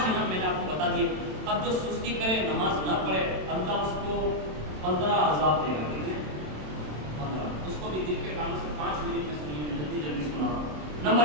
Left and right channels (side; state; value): left; late; 27 ms